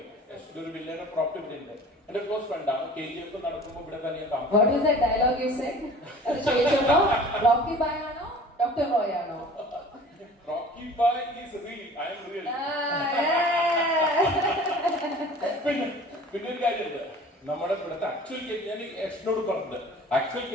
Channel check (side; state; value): both; normal; correlation 0.44